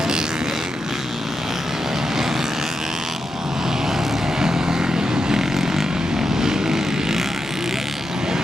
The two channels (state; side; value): normal; both; correlation 0.87